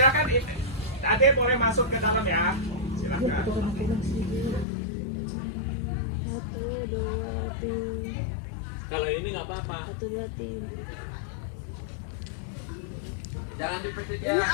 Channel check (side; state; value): right; drops out; at 4.7 s